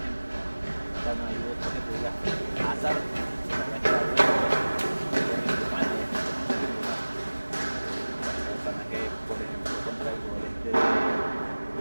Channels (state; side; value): inverted; both; correlation -1.00